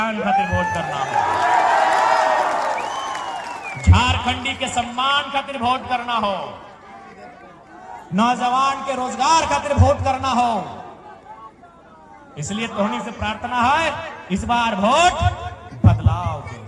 खातिर वोट करना हो, झारखंडी के सम्मान खातिर वोट करना हो, नौजवान के रोजगार खातिर वोट करना हो। इसलिए तोहनी से प्रार्थना है इस बार वोट बदलाव के।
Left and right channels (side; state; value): both; identical; correlation 1.00